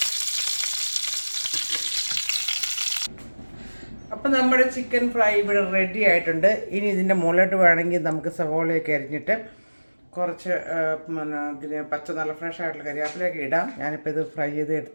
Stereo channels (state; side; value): inverted; both; correlation -1.00